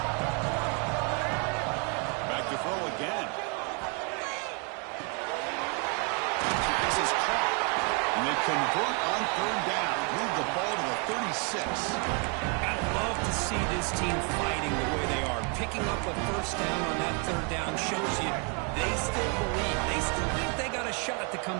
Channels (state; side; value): quieter; left; 36.2 dB